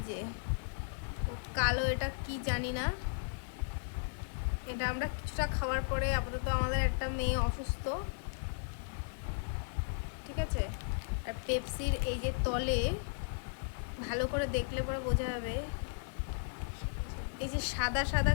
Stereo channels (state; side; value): silent; right; digital silence